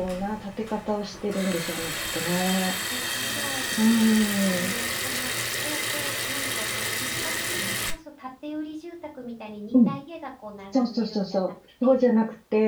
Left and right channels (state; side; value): identical; both; correlation 1.00